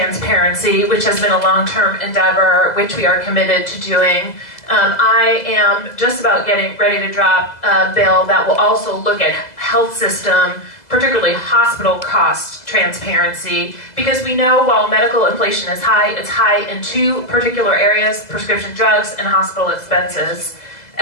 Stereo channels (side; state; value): right; late; 2.0 ms